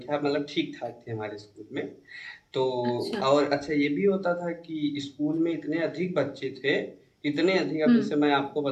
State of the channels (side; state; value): both; identical; correlation 1.00